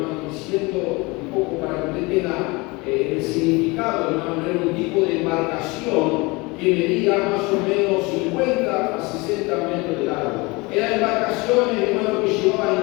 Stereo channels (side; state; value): right; quieter; 25.1 dB